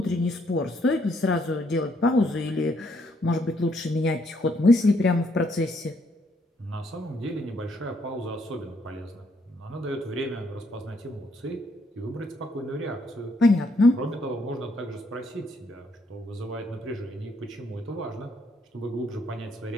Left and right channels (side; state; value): both; normal; correlation 0.72